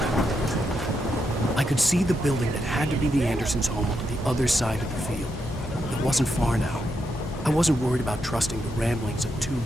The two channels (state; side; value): normal; both; correlation 0.82